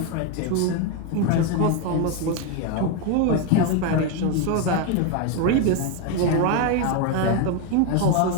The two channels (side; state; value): both; different; correlation 0.02